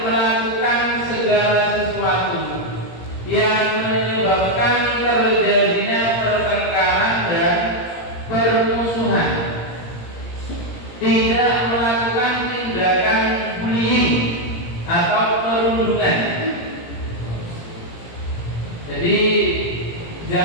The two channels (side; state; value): right; late; 17 ms